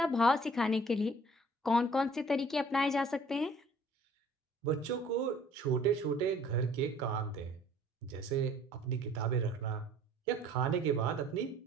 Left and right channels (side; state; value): both; normal; correlation 0.54